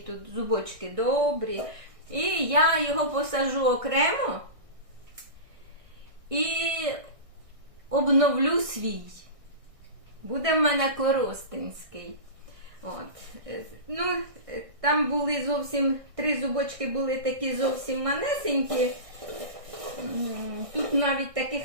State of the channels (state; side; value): late; left; 1.6 ms